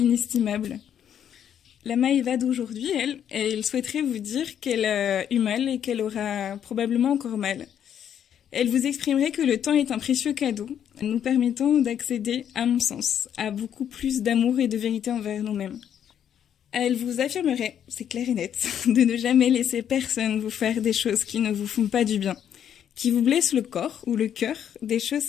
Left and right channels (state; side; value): quieter; right; 9.3 dB